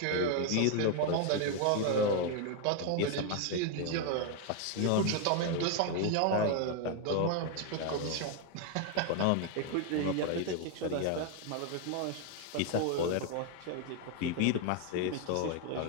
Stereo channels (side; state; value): both; different; correlation 0.01